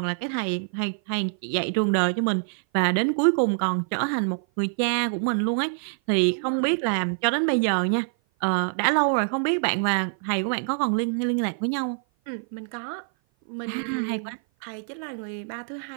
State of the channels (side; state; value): left; silent; 56 dB below the other